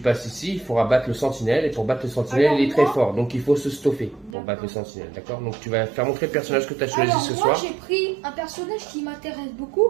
ici, il faudra battre le sentinelle. Et pour battre le sentinelle, Alors, il est très moi- fort. Donc il faut se stuffer pour battre le sentinelle. D'accord? Donc tu vas faire montrer le personnage que tu as choisi Alors, ce moi, soir. j'ai pris un personnage qui m'intéresse beaucoup.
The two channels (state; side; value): drops out; left; at 4.4 s